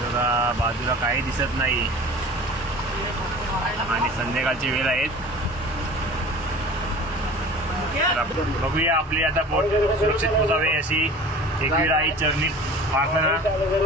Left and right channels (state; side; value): normal; both; correlation 0.41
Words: बघा बाजूला काही दिसत नाही आणि संध्याकाळची वेळ आहेत. बघूया आपली आता बोट सुरक्षित पोहोचावे अशी एकविराई चरणी प्रार्थना.